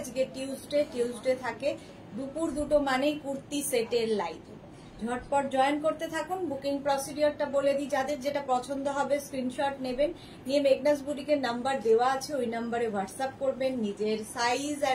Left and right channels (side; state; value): both; identical; correlation 1.00